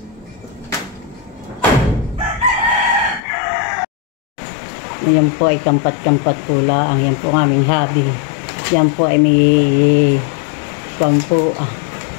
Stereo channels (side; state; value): right; drops out; at 3.2 s